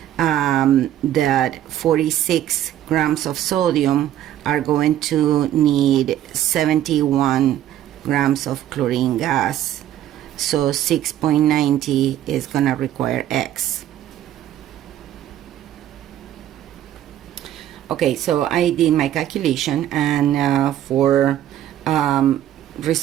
that 46 grams of sodium are going to need 71 grams of chlorine gas. So 6.90 is going to require X. Okay, so I did my calculation, and for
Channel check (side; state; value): left; quieter; 12.1 dB